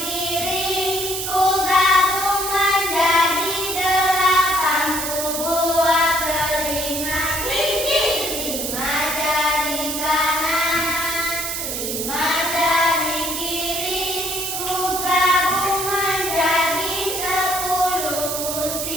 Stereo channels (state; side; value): noise; right; hiss, 3 dB below the sound